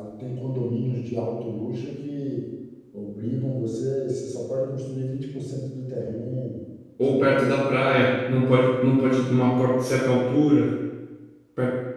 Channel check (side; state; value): both; identical; correlation 1.00